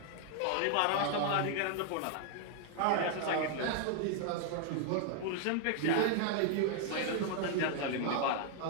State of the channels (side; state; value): both; different; correlation 0.00